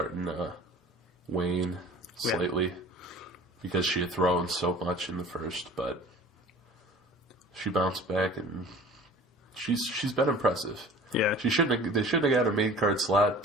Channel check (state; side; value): normal; both; correlation 0.44